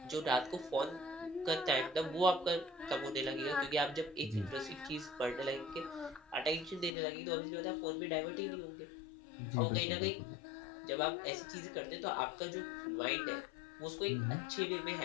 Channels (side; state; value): right; drops out; at 6.9 s